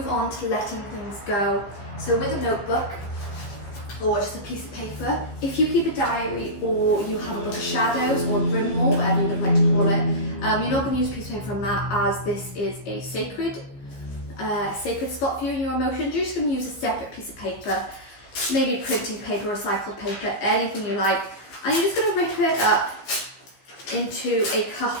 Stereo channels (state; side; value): late; right; 15 ms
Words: on to letting things go. So with a notebook or just a piece of paper, if you keep a diary or you have a book of shadows or a grimoire, whatever you would like to call it, you're not going to use a piece of paper from that, as this is a sacred spot for you and your emotions. You're just going to use a separate piece of paper, maybe printing paper, recycled paper, anything you like, and you're just going to rip it up into a